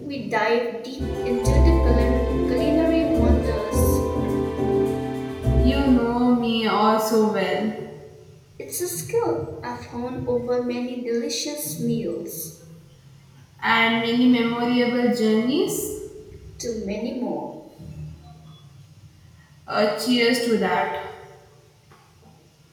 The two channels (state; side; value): identical; both; correlation 1.00